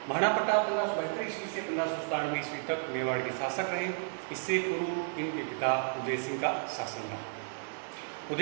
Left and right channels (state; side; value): silent; left; digital silence